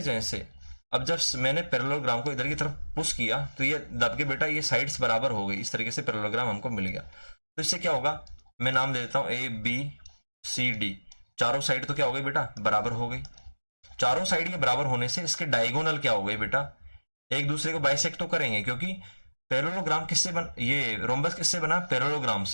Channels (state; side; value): inverted; both; correlation -1.00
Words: चेंज से अब जब मैंने पैरेललोग्राम को इधर की तरफ पुश किया तो ये दब के बेटा ये साइड्स बराबर हो गई, इस तरीके से पैरेललोग्राम हमको मिल गया। तो इससे क्या होगा, मैं नाम दे देता हूँ ए बी सी डी, चारों साइड तो क्या हो गई बेटा, बराबर हो गई। चारों साइड के बराबर होने से इसके डायगोनल क्या हो गए बेटा, एक दूसरे को बाइसेक्ट तो करेंगे, क्योंकि पैरेललोग्राम किससे बन, ये रोम्बस किससे बना, पैरेललोग्राम